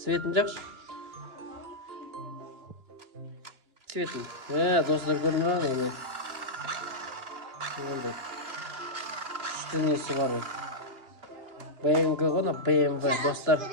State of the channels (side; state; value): left; late; 2.8 ms